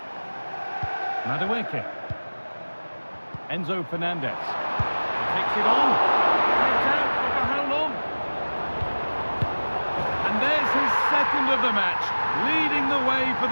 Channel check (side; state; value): both; inverted; correlation -1.00